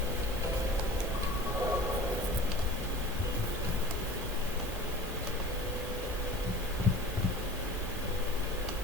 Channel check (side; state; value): both; normal; correlation 0.40